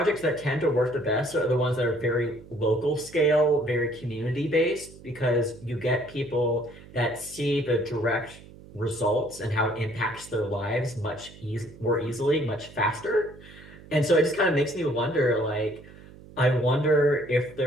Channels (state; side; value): noise; right; hum, 20 dB below the sound